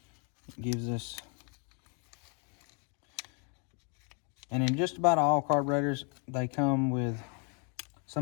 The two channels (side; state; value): right; quieter; 37.6 dB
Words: It gives us, and in just about all carburetors, they come with,